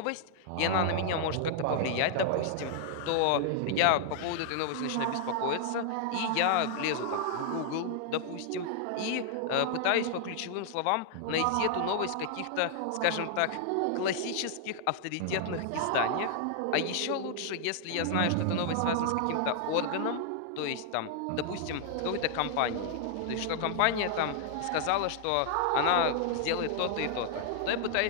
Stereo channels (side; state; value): both; different; correlation 0.00